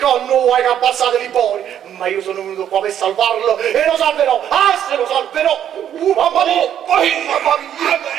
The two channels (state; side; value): quieter; left; 10.0 dB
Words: vuoi che abbassate i pori. Ma io sono venuto qua per salvarlo e lo salverò. Ah, se lo salverò. Mamma mia. Mamma mia.